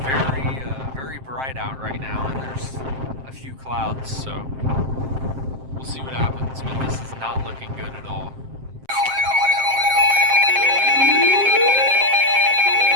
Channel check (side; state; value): left; late; 7.6 ms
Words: very bright out right now, and there's a few clouds, so we'll see what happens, but this is not looking good at all.